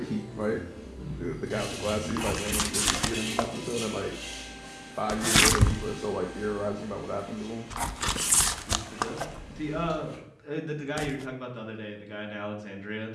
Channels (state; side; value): identical; both; correlation 1.00